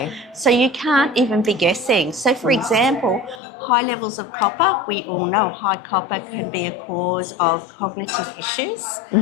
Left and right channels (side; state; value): right; drops out; at 3.4 s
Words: So you can't even be guessing. So, for example, high levels of copper, we all know high copper can be a cause of cognitive issues